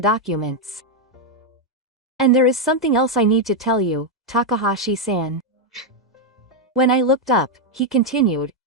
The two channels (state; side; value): normal; both; correlation 0.02